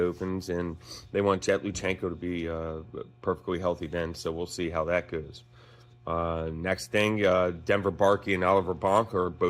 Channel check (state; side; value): identical; both; correlation 1.00